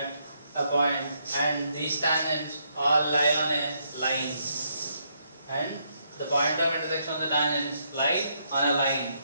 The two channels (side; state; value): both; inverted; correlation -0.75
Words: a point, and these tangents all lie on a line, and the point of intersection of the tangents lie on a line.